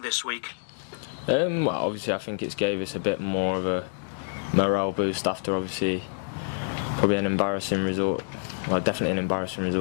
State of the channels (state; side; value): silent; right; digital silence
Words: this week? Well, obviously I think it's gave us a bit more of a morale boost after obviously probably an embarrassing result. Well, definitely an embarrassing